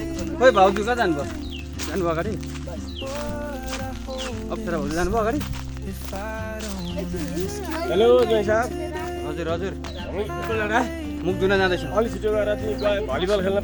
खोइ भाउजू कहाँ जानुभयो जानुभयो अगाडि अप्सरा भाउजू जानुभयो अगाडि हेलो जय साहब हजुर हजुर पिपलडाँडा मुख धुन जाँदैछौँ अलि छिटो गएर तिमी भलिबल खेल्न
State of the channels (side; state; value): both; identical; correlation 1.00